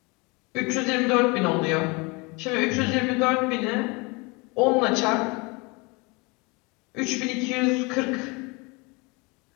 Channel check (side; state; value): right; quieter; 27.7 dB